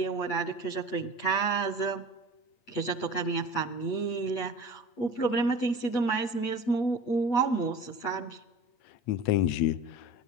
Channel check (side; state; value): right; late; 8.2 ms